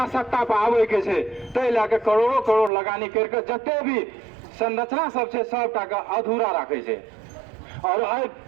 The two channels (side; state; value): left; drops out; at 2.7 s